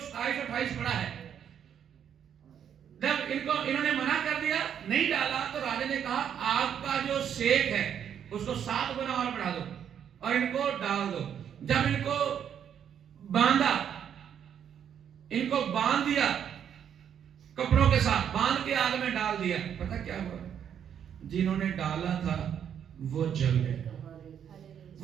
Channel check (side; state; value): left; quieter; 8.8 dB